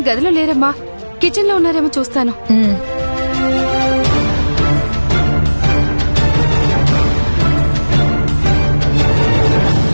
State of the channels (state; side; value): inverted; both; correlation -1.00